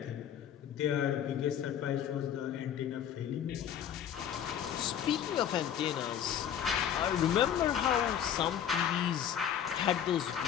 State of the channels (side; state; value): right; quieter; 9.3 dB